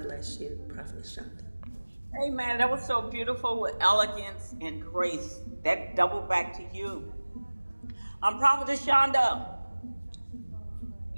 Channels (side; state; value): both; inverted; correlation -1.00